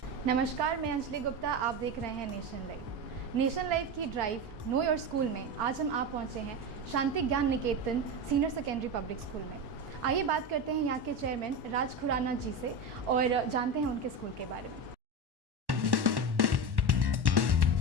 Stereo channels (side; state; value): left; late; 1.1 ms